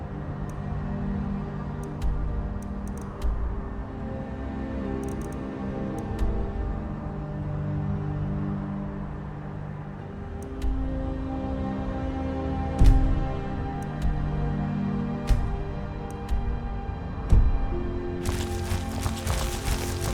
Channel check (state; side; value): identical; both; correlation 1.00